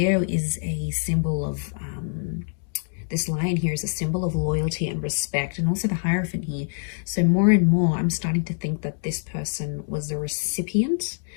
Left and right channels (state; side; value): silent; right; digital silence